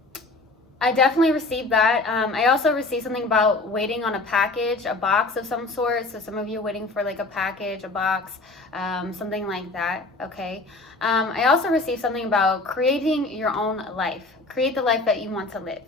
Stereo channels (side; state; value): right; quieter; 3.3 dB